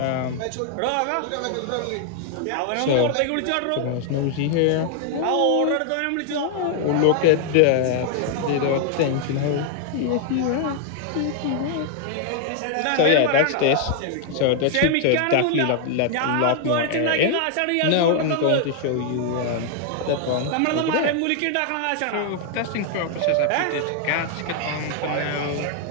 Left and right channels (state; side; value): different; both; correlation 0.00